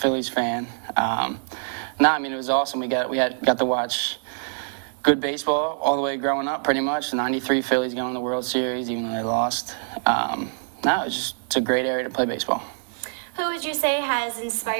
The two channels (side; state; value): left; silent; 62 dB below the other